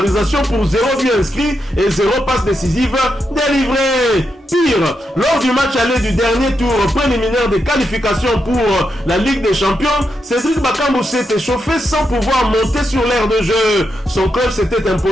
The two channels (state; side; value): normal; both; correlation 0.84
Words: pour 0 but inscrit et 0 passe décisive délivrée. Pire, lors du match aller du dernier tour préliminaire des qualifications pour la Ligue des Champions, Cédric Bakambu s'est échauffé sans pouvoir monter sur l'aire de jeu. Son club s'était